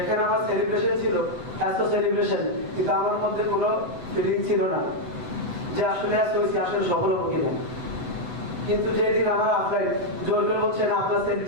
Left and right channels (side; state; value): left; late; 8.0 ms